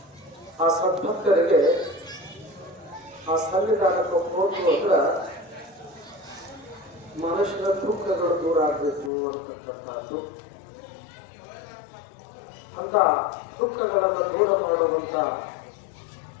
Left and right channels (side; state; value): right; drops out; at 9.1 s